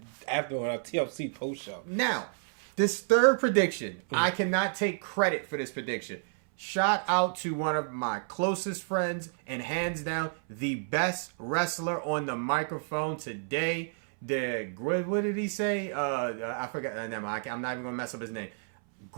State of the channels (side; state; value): left; silent; 58 dB below the other